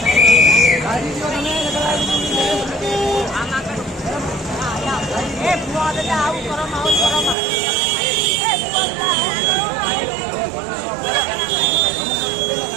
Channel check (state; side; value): drops out; left; at 7.4 s